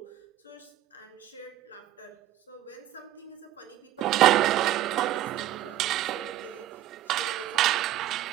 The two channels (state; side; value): quieter; left; 13.4 dB